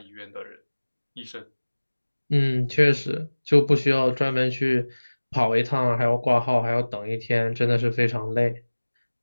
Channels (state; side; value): inverted; both; correlation -1.00